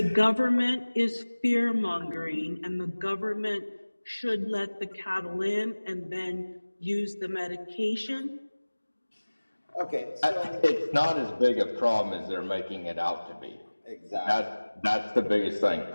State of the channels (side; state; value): both; inverted; correlation -1.00